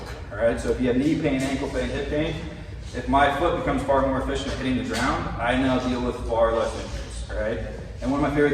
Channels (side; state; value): both; identical; correlation 1.00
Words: all right? So if you have knee pain, ankle pain, hip pain, if my foot becomes far more efficient at hitting the ground, I now deal with far less injuries, all right? And one of my